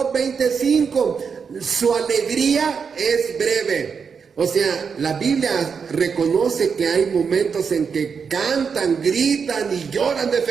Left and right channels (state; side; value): quieter; left; 6.1 dB